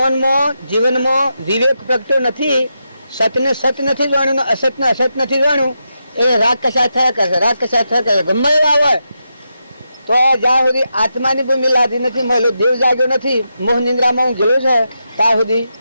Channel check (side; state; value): both; inverted; correlation -0.86